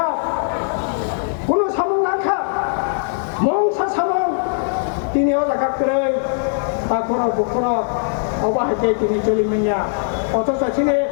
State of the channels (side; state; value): right; silent; 66 dB below the other